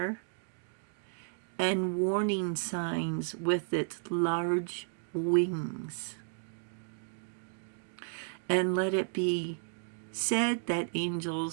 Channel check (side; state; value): left; silent; digital silence